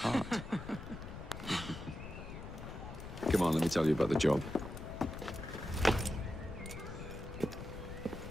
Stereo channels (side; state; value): left; noise; rumble, 10 dB below the sound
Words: Come on, let me tell you about the job.